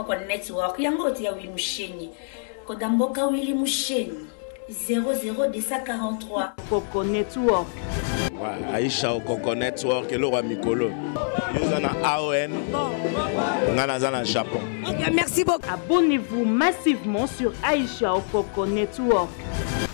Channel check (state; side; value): silent; right; 62 dB below the other